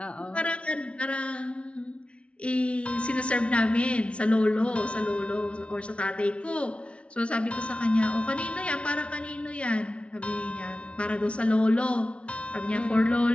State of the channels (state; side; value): late; right; 0.060 ms